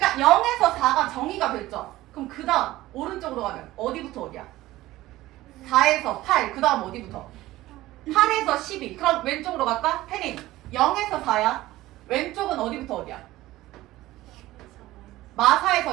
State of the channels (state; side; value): quieter; left; 16.8 dB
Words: 0에서 4가 정의가 됐죠? 그럼 그 다음 오른쪽으로 가면 어디부터 어디야? 4에서 8, 그 다음 어디부터? 8에서 12. 그럼 왼쪽으로 갈까? 태린 0에서 4야. 왼쪽은 어디부터 어디야?